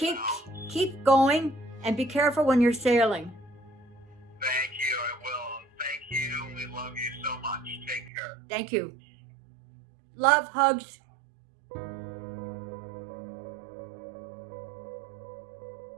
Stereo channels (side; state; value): left; drops out; at 8.1 s